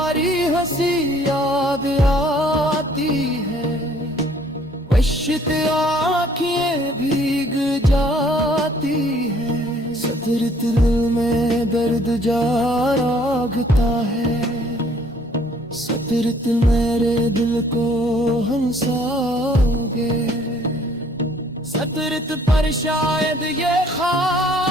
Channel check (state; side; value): normal; both; correlation 0.60